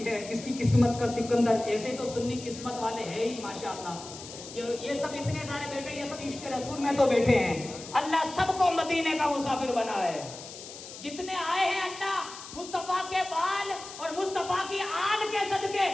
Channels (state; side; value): noise; left; hiss, 13 dB below the sound